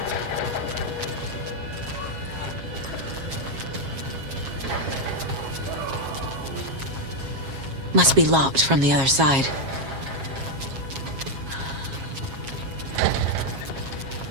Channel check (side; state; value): left; late; 7.4 ms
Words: Must be locked from the other side.